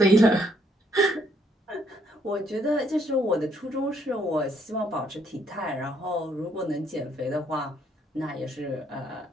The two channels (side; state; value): both; normal; correlation 0.69